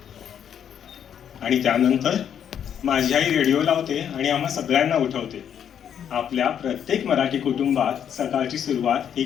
आणि त्यानंतर माझी आई रेडिओ लावते आणि आम्हा सगळ्यांना उठवते। आपल्या प्रत्येक मराठी कुटुंबात सकाळची सुरुवात ही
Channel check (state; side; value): quieter; right; 8.9 dB